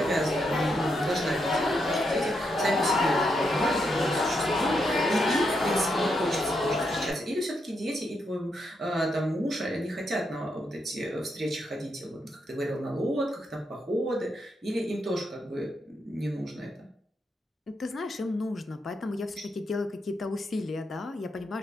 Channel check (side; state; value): both; normal; correlation 0.81